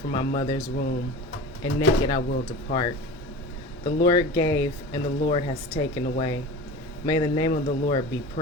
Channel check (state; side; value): normal; both; correlation 0.33